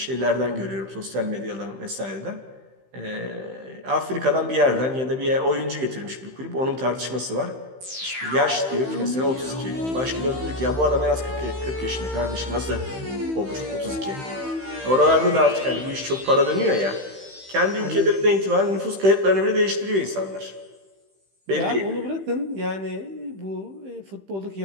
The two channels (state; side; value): late; left; 15 ms